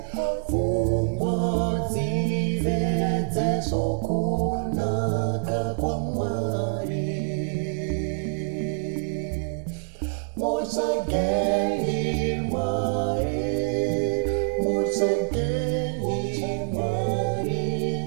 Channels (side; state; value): left; silent; digital silence